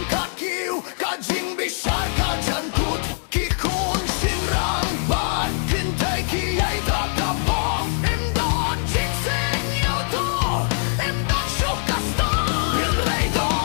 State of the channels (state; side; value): silent; right; 63 dB below the other